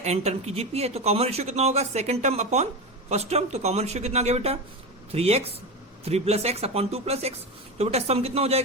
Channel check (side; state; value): both; normal; correlation 0.20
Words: n टर्म की जीपी है। तो कॉमन रेशियो कितना होगा second term upon first term, तो कॉमन रेशियो कितना आ गया बेटा 3x 3 plus X upon 2 plus x. तो बेटा सम कितना हो